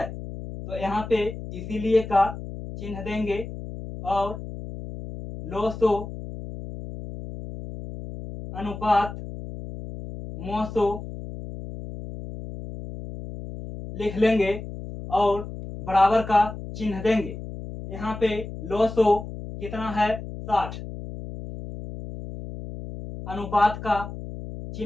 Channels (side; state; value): left; noise; hum, 10 dB below the sound